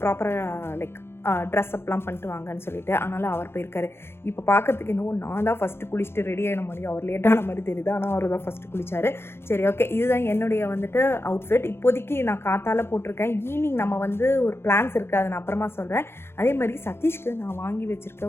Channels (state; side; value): late; right; 0.12 ms